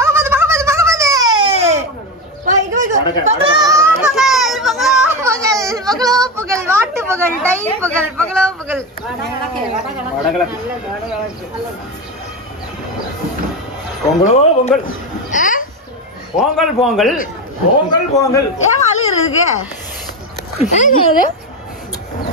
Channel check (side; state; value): both; normal; correlation 0.17